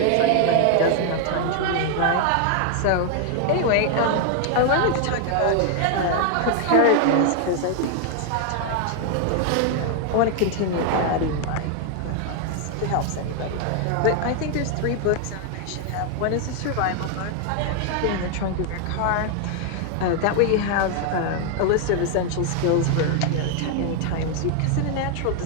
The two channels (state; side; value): different; both; correlation 0.00